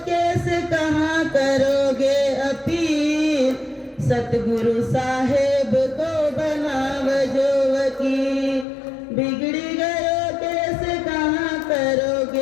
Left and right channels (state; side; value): drops out; right; at 8.7 s